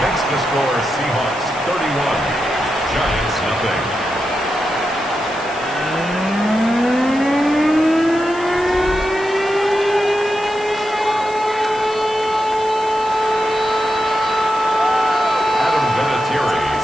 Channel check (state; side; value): noise; left; hiss, 20 dB below the sound